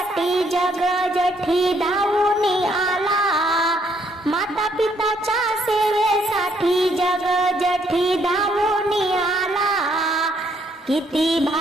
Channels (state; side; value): normal; both; correlation 0.70